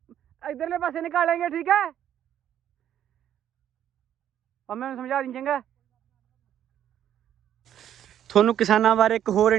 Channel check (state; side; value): quieter; left; 10.5 dB